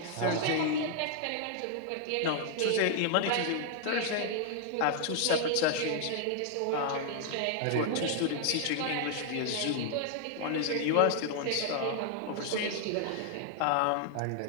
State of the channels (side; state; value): both; different; correlation 0.00